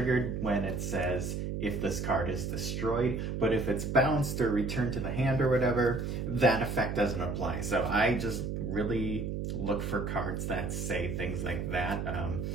when it says if this card is destroyed, but if it's bounced or returned to the hand or whatever, that effect doesn't apply. So I just really look for cards that say things like that.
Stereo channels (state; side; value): noise; right; hum, 3 dB below the sound